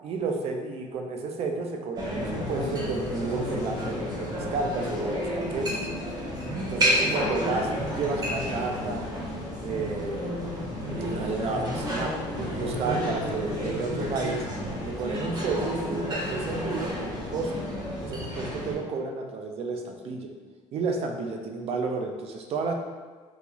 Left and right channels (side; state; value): both; normal; correlation 0.41